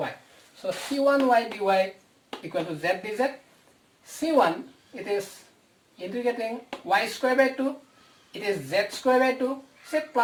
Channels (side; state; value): both; identical; correlation 1.00